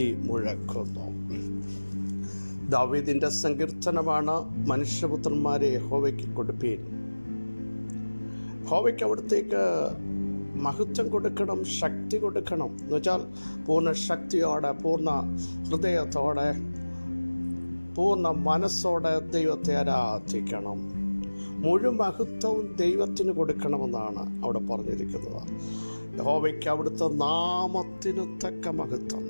മുഴക്കുന്നു. ദാവീദിന്റെ സങ്കീർത്തനമാണ്, മനുഷ്യപുത്രന്മാരെ യഹോവയ്ക്ക് കൊടുപ്പീൻ. യഹോവയ്ക്ക് അവിടത്തേക്ക് മഹത്വം കൊടുക്കണം, ശക്തി കൊടുക്കണം. എന്ന് വെച്ചാൽ പൂർണ്ണ ശക്തിയോടെ, പൂർണ്ണ ഹൃദയത്തോടെ, പൂർണ്ണ മനസ്സോടെ ദൈവത്തെ ആരാധിക്കണം. മുഴുവൻ മഹത്വവും ദൈവത്തിന് കൊടുക്കണമെന്നാണ് അവിടെ പറഞ്ഞിരിക്കുന്നത്. യഹോവയ്ക്ക് അവിടുത്തെ നാമത്തിന് തക്ക മഹത്വം.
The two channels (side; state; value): both; inverted; correlation -1.00